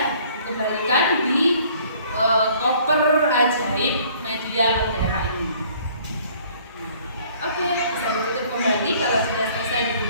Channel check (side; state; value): both; inverted; correlation -0.57